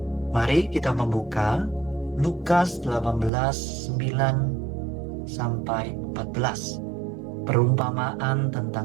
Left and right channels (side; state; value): left; drops out; at 3.3 s